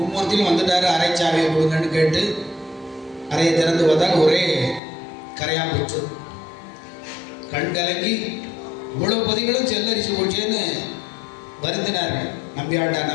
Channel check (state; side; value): drops out; right; at 4.8 s